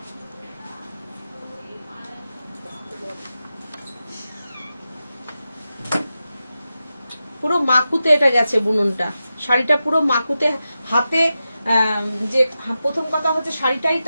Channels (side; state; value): both; inverted; correlation -0.92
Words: পুরো মাকুতে এটা গেছে বুননটা, শাড়িটা পুরো মাকুতে। হাতে যে প্রথম কথা হচ্ছে শাড়িটাই